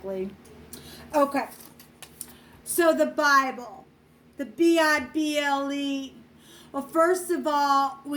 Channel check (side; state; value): both; identical; correlation 1.00